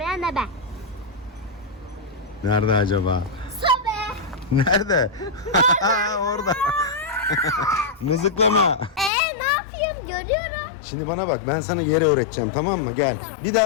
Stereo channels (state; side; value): drops out; right; at 9.1 s